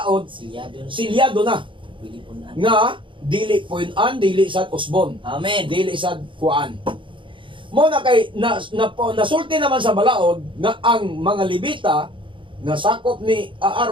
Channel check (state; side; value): late; left; 0.24 ms